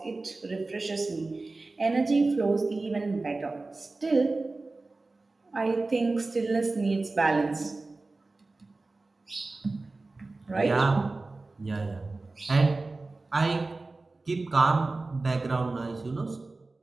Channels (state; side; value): quieter; left; 3.4 dB